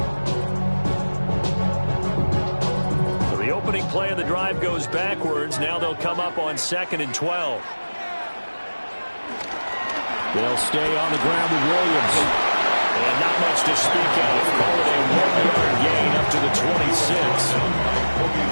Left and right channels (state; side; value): inverted; both; correlation -1.00